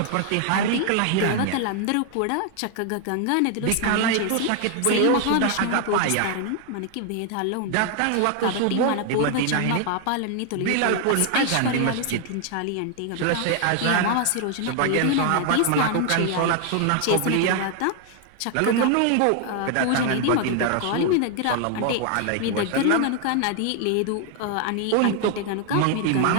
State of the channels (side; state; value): both; different; correlation 0.00